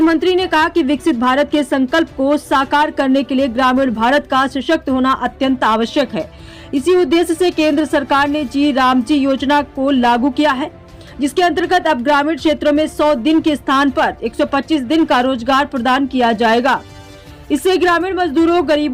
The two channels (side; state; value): both; identical; correlation 1.00